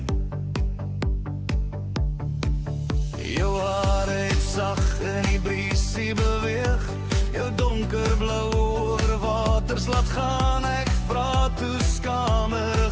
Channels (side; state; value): both; identical; correlation 1.00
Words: Jou hare het sag in die briesie beweeg, jou donkerblou oorwaters laat gaan. Ek vra toe